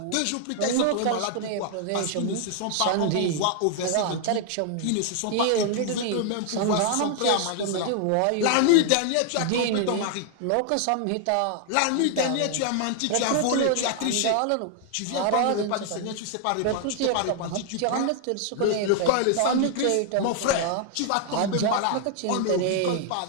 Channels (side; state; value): both; different; correlation 0.00